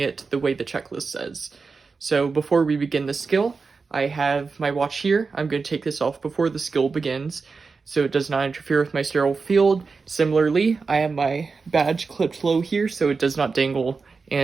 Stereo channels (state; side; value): quieter; left; 4.6 dB